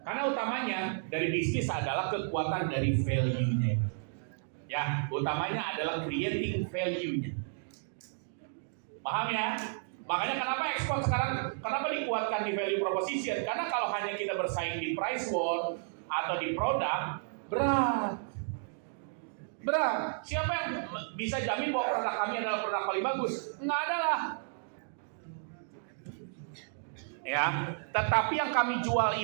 Karena utamanya dari bisnis adalah kekuatan dari value-nya. Ya, utamanya adalah creating value-nya. Paham ya? Makanya kenapa ekspor sekarang, kenapa dikuatkan di value proposition? Karena kalau hanya kita bersaing di price war atau di produk, berat. Siapa yang bisa jamin bahwa produk kami adalah produk paling bagus? Nggak ada lah. Ya, tetapi yang kami jual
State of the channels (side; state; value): left; silent; digital silence